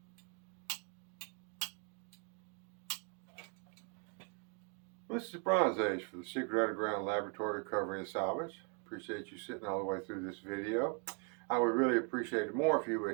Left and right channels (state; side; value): quieter; left; 37.4 dB